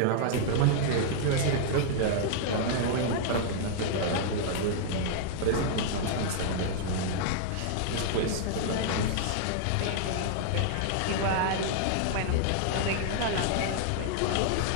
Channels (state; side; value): different; both; correlation -0.01